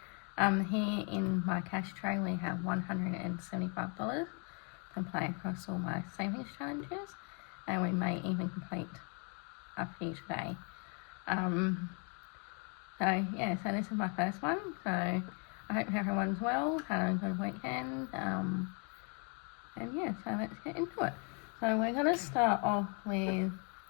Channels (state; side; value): quieter; right; 36.7 dB